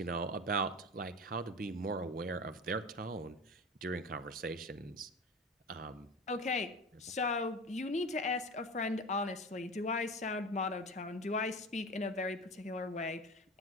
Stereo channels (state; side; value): normal; both; correlation 0.30